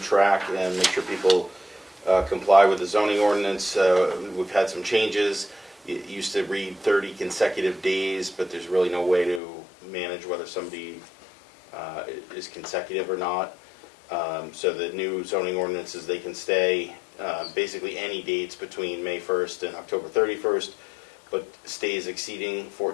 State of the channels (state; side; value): drops out; right; at 9.4 s